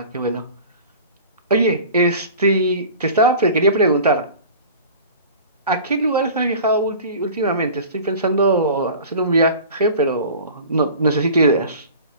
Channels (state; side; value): inverted; both; correlation -0.40